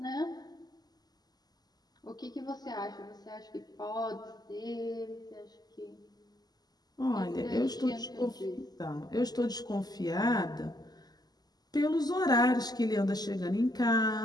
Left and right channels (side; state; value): right; late; 0.20 ms